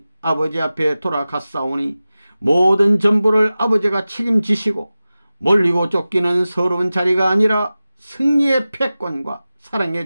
아버지 앞에 돌아갔사오니 모든 전부를 아버지가 책임지시고 몰리고 쫓기는 서러운 자리가 아니라 승리의 패권과 사랑의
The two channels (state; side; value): inverted; both; correlation -0.96